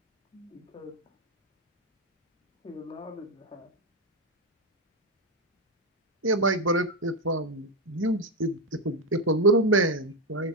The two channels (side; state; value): both; normal; correlation 0.07